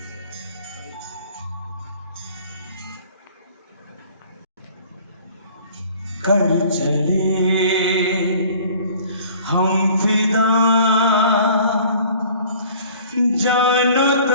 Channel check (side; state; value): both; inverted; correlation -0.50